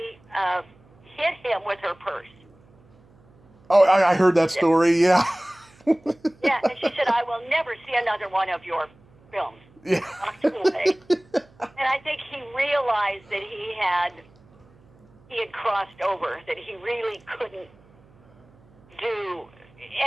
hit him with her purse. Oh, I heard that story, yeah. Yeah, and she said, I will never see another one of your films. Yeah. Walked away. And I think he realized that he had crossed over, that he really couldn't do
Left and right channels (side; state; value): right; noise; hum, 29 dB below the sound